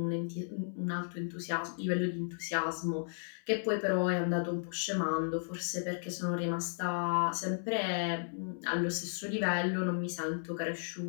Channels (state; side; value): silent; right; 55 dB below the other